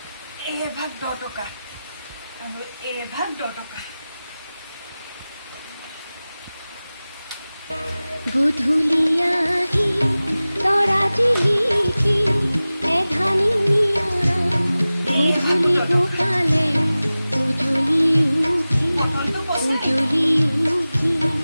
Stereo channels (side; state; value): both; inverted; correlation -0.97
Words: ভাগ 10 টকা আৰু ভাগ 10 টকা। গধূলি আহি তৰা জিলিকি এধানি নিয়ৰা গধূলি গোপালে উজলি উঠি